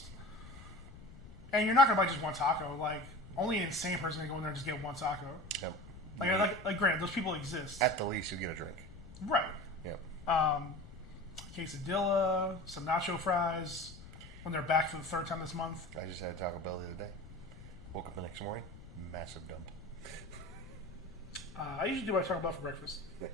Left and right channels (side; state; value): left; noise; rumble, 16 dB below the sound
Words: And you're not gonna buy just one taco. Like only an insane person can go in there and just get one taco. Yep. Like granted, those people exist. At the least, you get a drink. Right. Yep. Quesadilla, some nacho fries. When they're back for the third time this month. I just had Taco Bell the other day. Woke up the next morning, massive dump. I usually do what I talk about for breakfast.